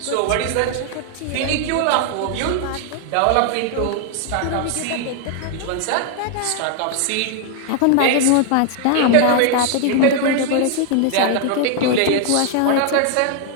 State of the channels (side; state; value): both; different; correlation 0.00